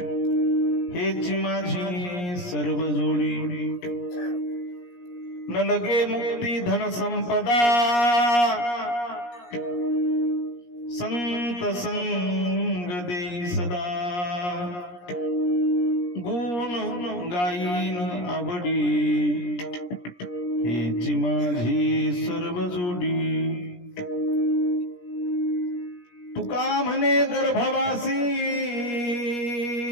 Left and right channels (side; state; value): right; late; 17 ms